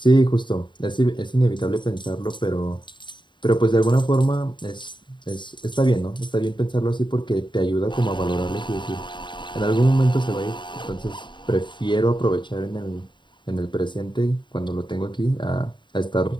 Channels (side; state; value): right; late; 0.23 ms